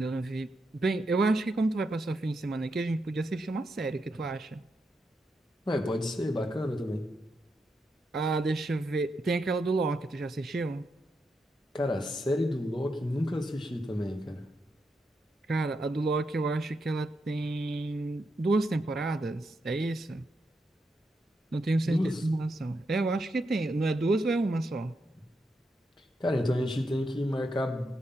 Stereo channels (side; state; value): both; normal; correlation 0.83